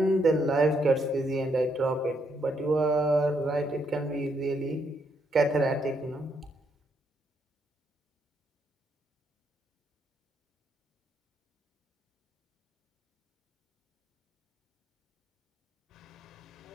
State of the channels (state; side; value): normal; both; correlation 0.75